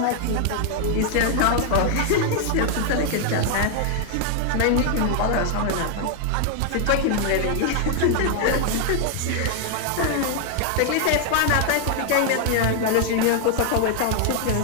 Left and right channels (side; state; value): both; different; correlation 0.00